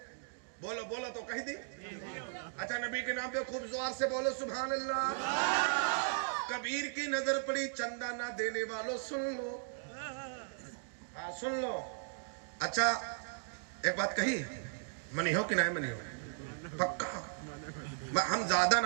बोलो बोलो तो कह दी। अच्छा, नबी के नाम पे खूब जोर से बोलो सुभान अल्लाह। कबीर की नजर पड़ी, चंदा ना देने वालों सुन लो। हाँ सुन लो। अच्छा एक बात कही, मनी हो कि नहीं मनी हो? पक्का हम ज्यादा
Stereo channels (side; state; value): left; silent; digital silence